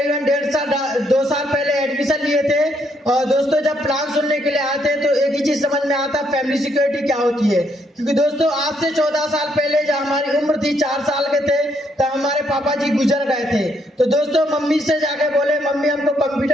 2 साल पहले एडमिशन लिए थे और दोस्तों जब प्लान सुनने के लिए आए थे तो एक ही चीज समझ में आता फैमिली सिक्योरिटी क्या होती है। क्योंकि दोस्तों आज से 14 साल पहले जब हमारी उम्र थी 4 साल के थे तब हमारे पापा जी गुजर गए थे। तो दोस्तों मम्मी से जाके बोले मम्मी हमको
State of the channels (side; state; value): both; normal; correlation 0.73